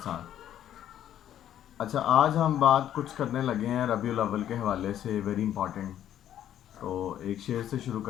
ساتھ۔ اچھا، آج ہم بات کچھ کرنے لگے ہیں ربیع الاول کے حوالے سے، ویری امپورٹنٹ۔ تو ایک شعر سے شروع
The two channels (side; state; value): right; quieter; 11.1 dB